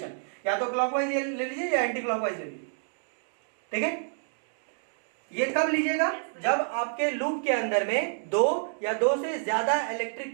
या तो क्लॉकवाइज ले लीजिए या एंटी क्लॉकवाइज ले लीजिए। ठीक है? ये कब लीजिएगा? जब आपके लूप के अंदर में 2 या 2 से ज्यादा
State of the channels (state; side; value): silent; left; 59 dB below the other